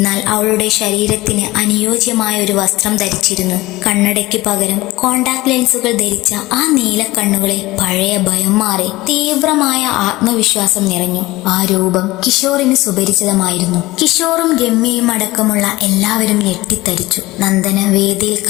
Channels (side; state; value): right; quieter; 19.2 dB